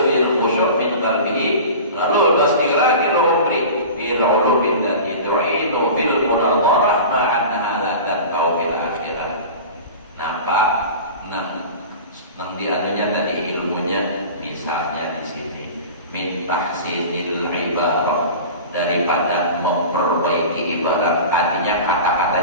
fil khusyuk min qalbihi. Lalu pasti lagi umri bil ulubin dan idrinu fil munadharah ma'annaha la tanfa'u fil akhirah. Nampak nang dianunya tadi ilmunya misalnya di sini min tahsinil ibarah, daripada memperbaiki ibarat, artinya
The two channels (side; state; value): both; inverted; correlation -0.35